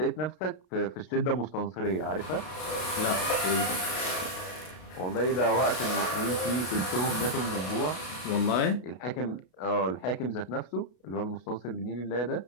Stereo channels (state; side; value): late; right; 32 ms